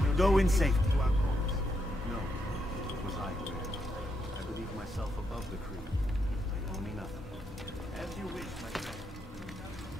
Go in safety. No, it was I who erred. I believe myself above the creed. You owe me nothing. As you wish, my friend.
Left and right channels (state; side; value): normal; both; correlation 0.80